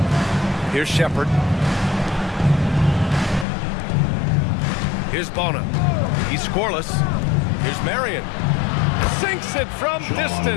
Here's Shepard. Here's Bona. He's scoreless. Here's Marion. Sinks it from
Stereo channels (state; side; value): drops out; right; at 3.5 s